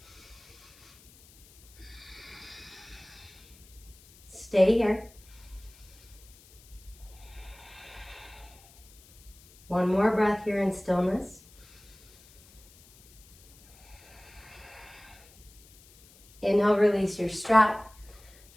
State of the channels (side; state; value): left; noise; hiss, 25 dB below the sound